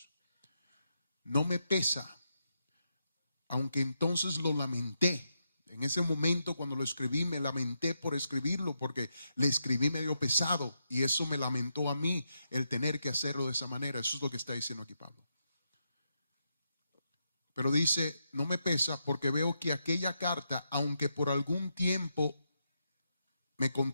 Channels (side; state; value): both; inverted; correlation -0.83